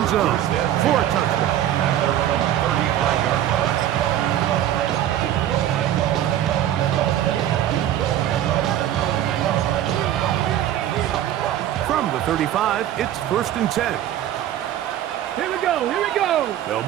zone for a touchdown. From the 35, it's first and 10. Here we go. They'll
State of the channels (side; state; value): left; quieter; 11.8 dB